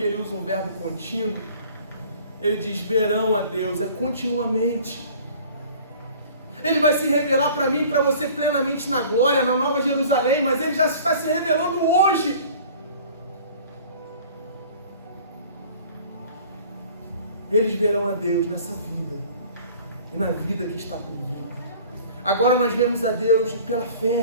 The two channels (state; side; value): inverted; both; correlation -0.48